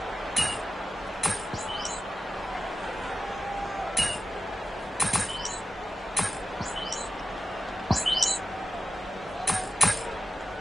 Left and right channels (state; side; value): normal; both; correlation 0.93